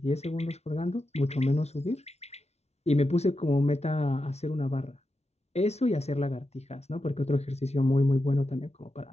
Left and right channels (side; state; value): right; late; 0.31 ms